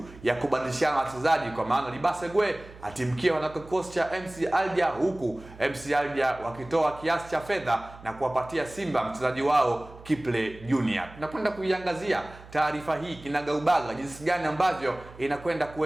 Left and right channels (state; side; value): noise; right; hum, 19 dB below the sound